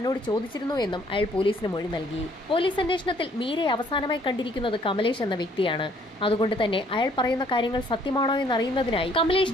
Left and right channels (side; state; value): both; normal; correlation 0.62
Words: ചോദിച്ചിരുന്നു എന്നും അയാൾ പോലീസിന് മൊഴി നൽകി. പോലീസ് അന്വേഷണത്തിൽ മീരയെ അവസാനമായി കണ്ടിരിക്കുന്നത് കമലേഷ് എന്ന വ്യക്തിയാണ്. അതുകൊണ്ട് തന്നെ അയാൾ പറയുന്ന കാര്യങ്ങൾ സത്യമാണോ എന്നറിയുന്നതിനായി